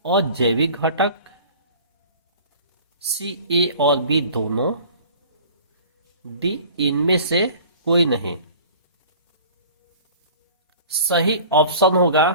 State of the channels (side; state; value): both; inverted; correlation -0.45